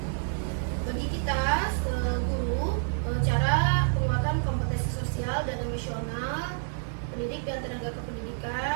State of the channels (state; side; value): silent; left; 59 dB below the other